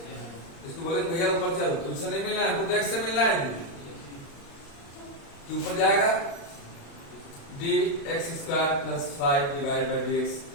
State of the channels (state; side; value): late; right; 36 ms